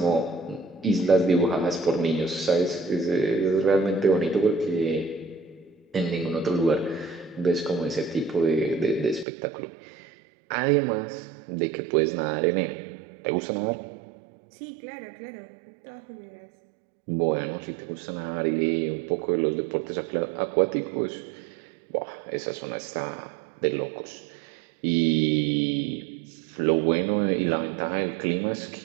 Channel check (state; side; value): drops out; left; at 9.2 s